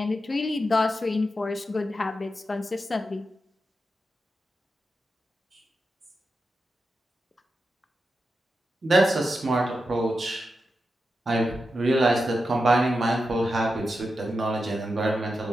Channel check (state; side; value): normal; both; correlation 0.89